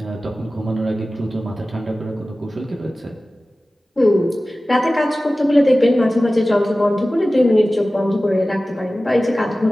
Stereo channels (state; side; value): normal; both; correlation 0.96